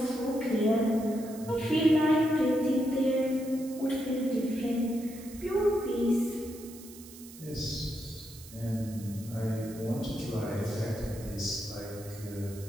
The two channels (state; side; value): noise; right; hiss, 18 dB below the sound